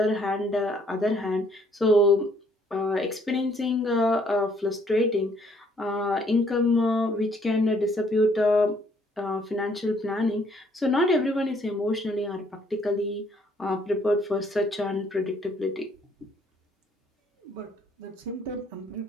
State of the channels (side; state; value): both; normal; correlation 0.65